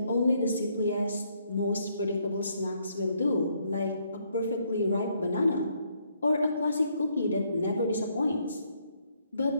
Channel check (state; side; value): inverted; both; correlation -0.71